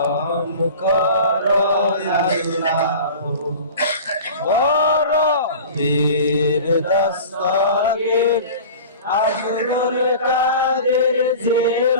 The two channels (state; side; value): inverted; both; correlation -0.38